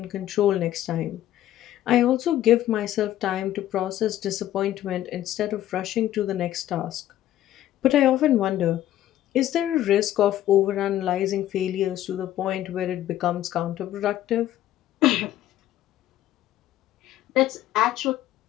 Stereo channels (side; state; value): right; quieter; 13.1 dB